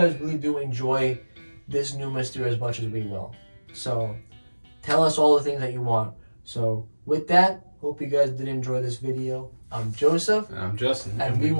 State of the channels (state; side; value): inverted; both; correlation -1.00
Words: really do enjoy this new Mrstere as much as we will. So tell us all the things that you want. So with that, hope you guys did enjoy this video. I'm Joseph. And I'm Justin. And we